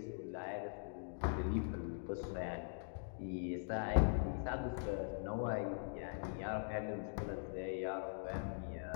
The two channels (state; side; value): silent; right; digital silence